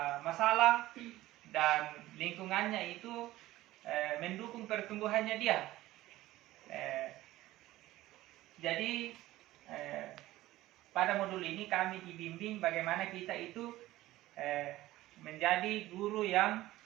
masalah, dan lingkungannya itu mendukung pertumbuhannya dia. Jadi pada modul ini kami dibimbing bagaimana kita itu menjadi guru yang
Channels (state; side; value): quieter; left; 16.4 dB